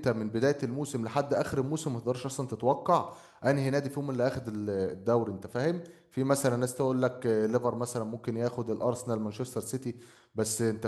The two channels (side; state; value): both; identical; correlation 1.00